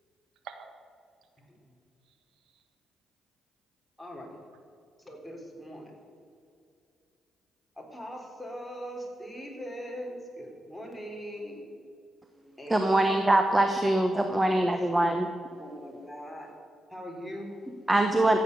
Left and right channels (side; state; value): both; normal; correlation 0.90